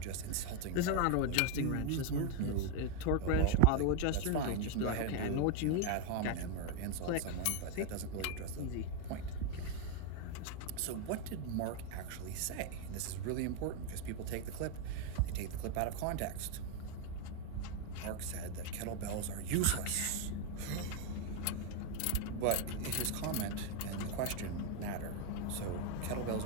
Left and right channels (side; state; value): both; different; correlation 0.02